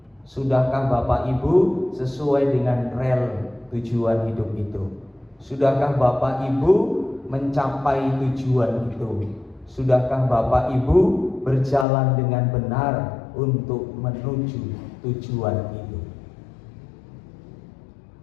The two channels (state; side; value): drops out; right; at 11.9 s